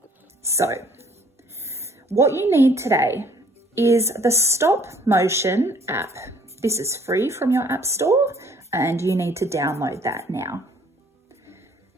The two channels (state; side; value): normal; both; correlation 0.58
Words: So, what you need today is the stop motion app. This is free from your app store and you need to download that now.